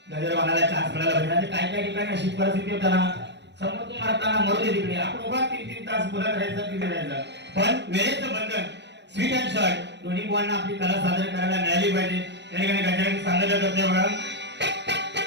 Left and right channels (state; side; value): late; left; 0.51 ms